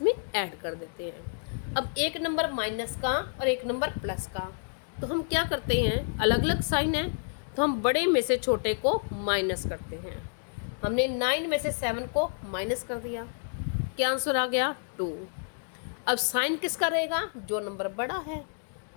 में ऐड कर देते हैं। अब एक नंबर माइनस का और एक नंबर प्लस का, तो हम क्या करते हैं, अलग अलग साइन है तो हम बड़े में से छोटे को माइनस करते हैं। हमने 9 में से 7 को माइनस कर दिया, क्या आंसर आ गया, 2। अब साइन किसका रहेगा, जो नंबर बड़ा है।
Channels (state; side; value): silent; right; digital silence